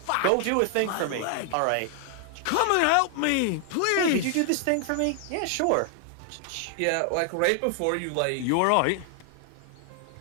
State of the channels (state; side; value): different; both; correlation 0.00